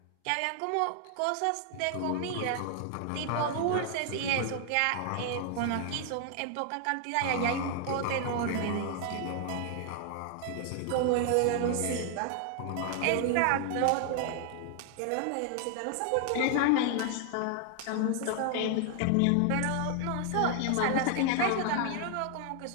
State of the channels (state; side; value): different; both; correlation 0.00